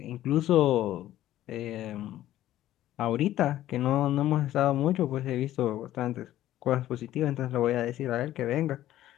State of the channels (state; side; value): quieter; right; 13.6 dB